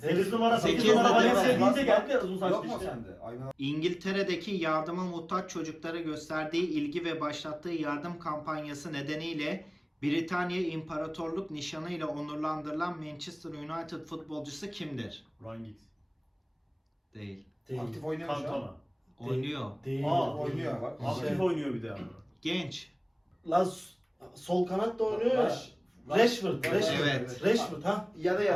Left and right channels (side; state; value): both; identical; correlation 1.00